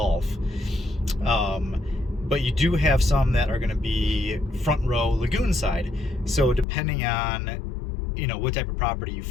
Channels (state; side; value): drops out; right; at 6.7 s